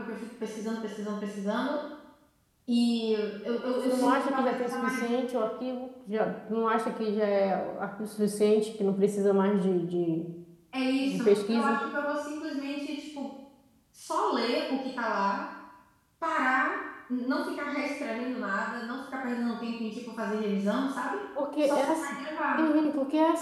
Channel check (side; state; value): both; identical; correlation 1.00